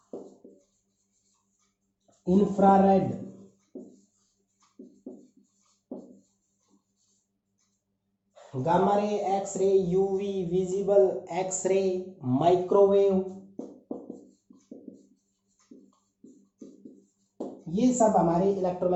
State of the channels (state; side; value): identical; both; correlation 1.00